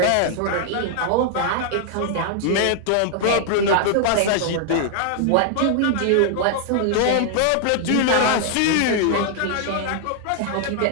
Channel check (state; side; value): different; both; correlation 0.00